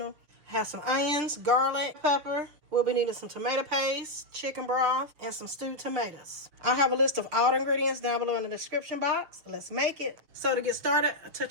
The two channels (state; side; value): late; left; 6.7 ms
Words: I have some onions, garlic, pepper. We'll be needing some tomato paste, chicken broth, and some stewed tomatoes. I'll have a list of all the ingredients down below in the description box. Let's make it. So to get started, a